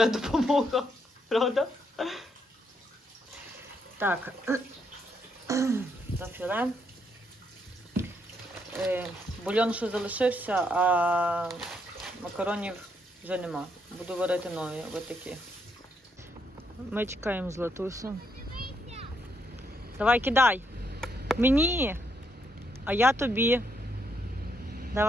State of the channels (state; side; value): normal; both; correlation 0.76